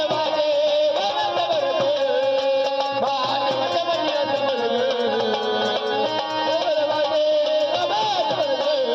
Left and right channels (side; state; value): both; identical; correlation 1.00